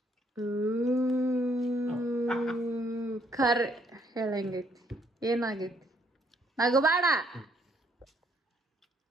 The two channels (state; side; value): normal; both; correlation 0.68